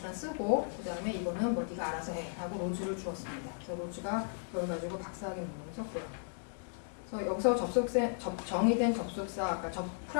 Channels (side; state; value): right; silent; digital silence